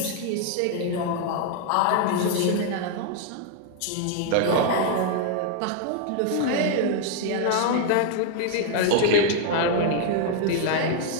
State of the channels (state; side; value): different; both; correlation 0.00